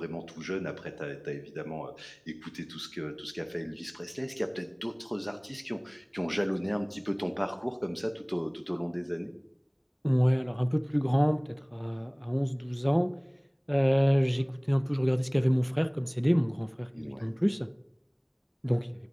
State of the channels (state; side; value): identical; both; correlation 1.00